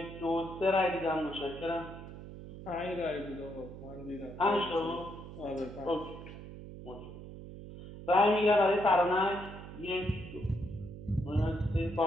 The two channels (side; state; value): right; noise; hum, 13 dB below the sound